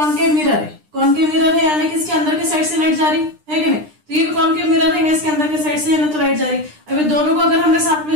मिरर है। कॉनकेव मिरर है यानी कि इसके अंदर के साइड से लाइट जा रही है कि नहीं, तो ये भी कॉनकेव मिरर है, इसके अंदर के साइड से है ना तो लाइट जा रही। अभी दोनों को अगर हमने साथ में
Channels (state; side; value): late; left; 9.9 ms